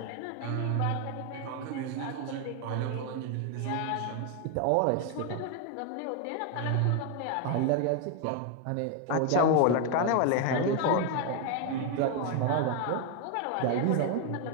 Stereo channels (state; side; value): different; both; correlation 0.01